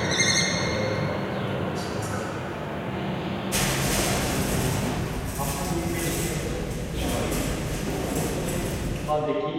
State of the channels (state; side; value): identical; both; correlation 1.00